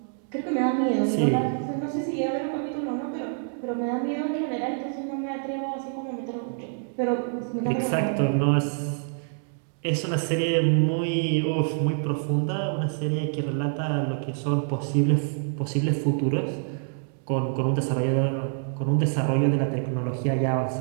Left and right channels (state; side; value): silent; left; 61 dB below the other